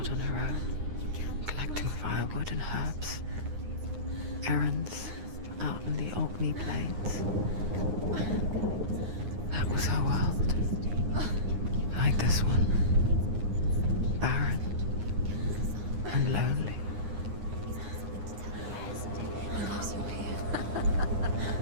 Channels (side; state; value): left; late; 9.7 ms